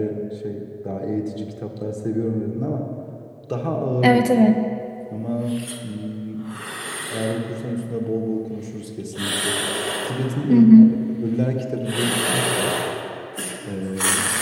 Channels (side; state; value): both; identical; correlation 1.00